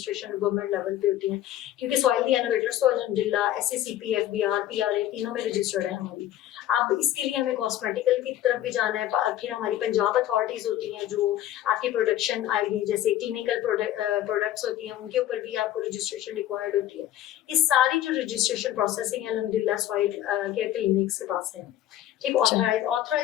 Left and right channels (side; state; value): right; quieter; 12.5 dB